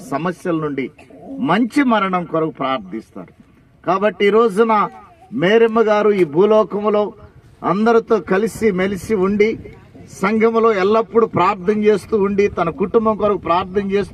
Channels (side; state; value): both; identical; correlation 1.00